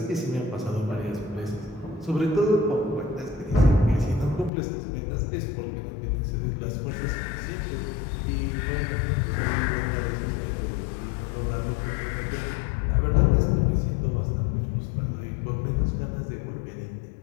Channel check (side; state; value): right; drops out; at 4.5 s